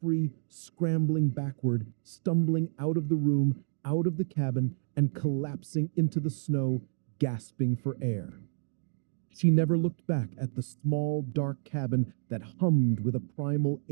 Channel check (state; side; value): silent; left; digital silence